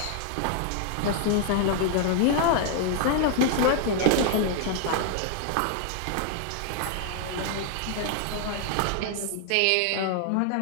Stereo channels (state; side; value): different; both; correlation 0.00